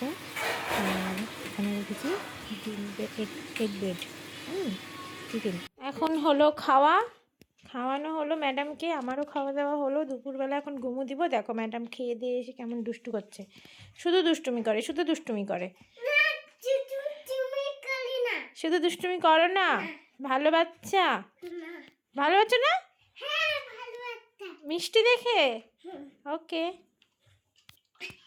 আর এখানে রেখেছি এগ ব্রেড, চিকেন। এখন হলো খাওয়ানো হলো ম্যাডামকে, আমারও খাওয়া দাওয়া হলো। দুপুরবেলা এখন ঘুমো দিব। দেখো ম্যাডাম খেয়ে দিয়ে এসে কেমন দুষ্টু করছে, শুধু দুষ্টুমি করে শুধু দুষ্টুমি করো না। ভালো বাচ্চা না, মিষ্টি দেখে। ওকে,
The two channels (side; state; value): both; identical; correlation 1.00